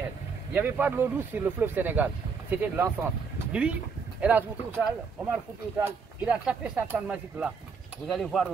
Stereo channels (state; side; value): quieter; left; 5.4 dB